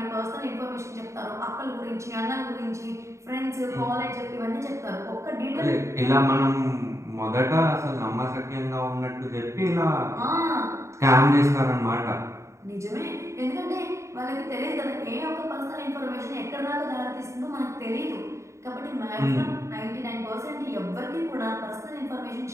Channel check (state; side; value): late; left; 0.14 ms